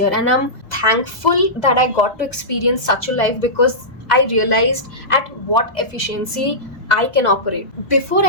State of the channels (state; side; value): late; right; 1.8 ms